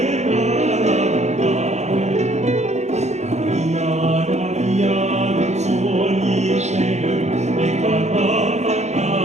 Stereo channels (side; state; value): left; late; 0.33 ms